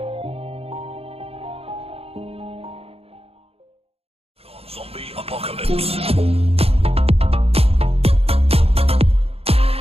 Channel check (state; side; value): late; left; 0.29 ms